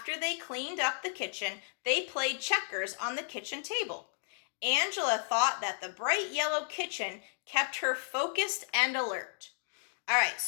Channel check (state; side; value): silent; right; digital silence